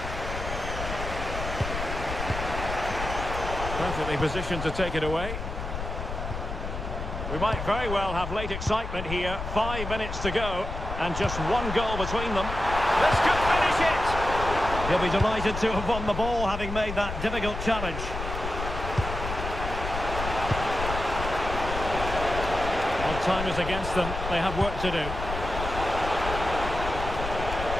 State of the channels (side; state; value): left; noise; rumble, 6 dB below the sound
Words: Perfectly positioned to take it away. We might very well have late excitement here. 5 minutes to go, and just one goal between them. This could finish it! He'll be delighted to have won the ball, having made that difficult challenge. Well, time is against them. They have work to do.